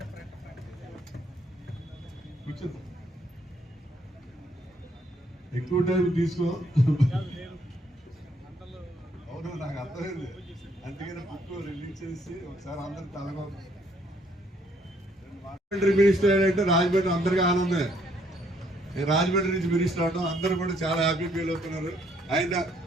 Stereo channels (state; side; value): normal; both; correlation 0.68